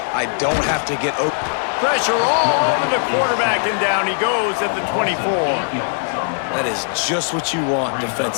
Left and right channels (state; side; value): silent; right; 63 dB below the other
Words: I don't have to get open. Pressure all over the quarterback, and down he goes at the 24. That is just what you want